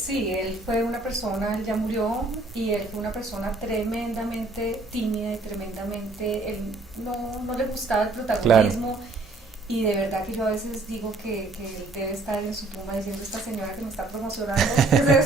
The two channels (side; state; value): left; quieter; 3.3 dB